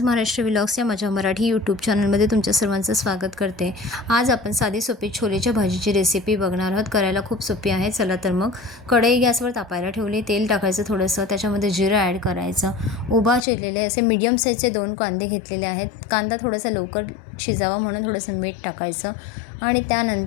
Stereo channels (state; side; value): drops out; right; at 13.4 s